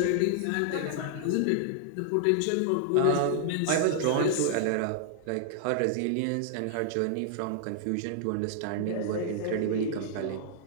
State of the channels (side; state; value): both; different; correlation -0.01